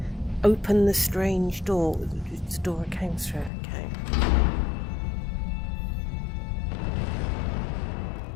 open the strange door. It's the door I came through. Okay.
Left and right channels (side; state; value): right; drops out; at 3.5 s